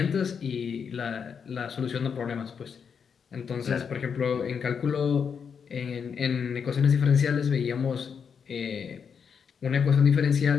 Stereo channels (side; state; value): right; quieter; 6.6 dB